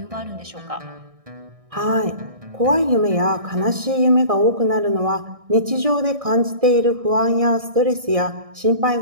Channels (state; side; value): late; left; 1.6 ms